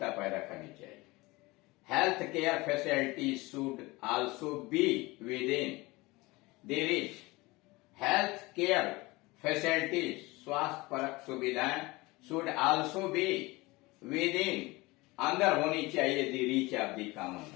पैदा करनी चाहिए। Health care facilities should also be with in the reach. Health care facilities, स्वास्थ्य परक सुविधाएं, should also be with in, अंदर होनी चाहिए, the reach of the common,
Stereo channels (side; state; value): right; quieter; 22.3 dB